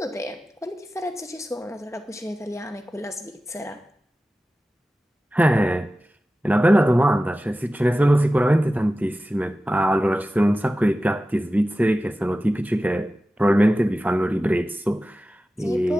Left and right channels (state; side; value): normal; both; correlation 0.95